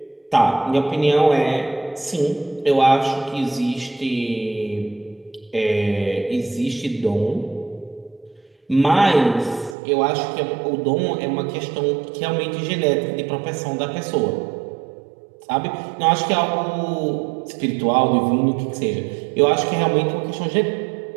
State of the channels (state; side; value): drops out; left; at 9.8 s